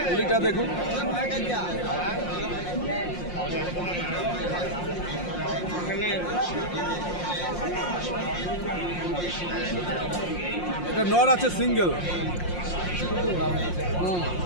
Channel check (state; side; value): late; right; 5.6 ms